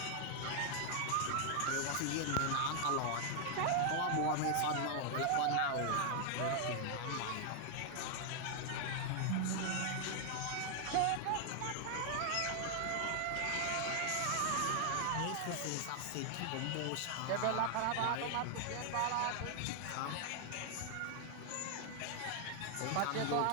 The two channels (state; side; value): different; both; correlation 0.00